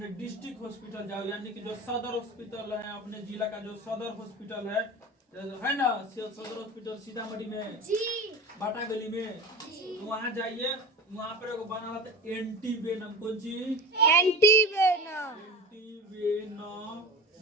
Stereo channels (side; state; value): both; normal; correlation 0.31